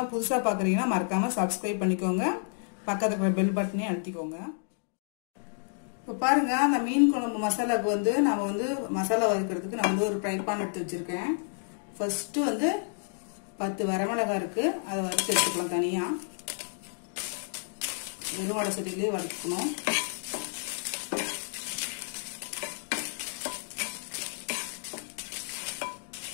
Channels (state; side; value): silent; right; digital silence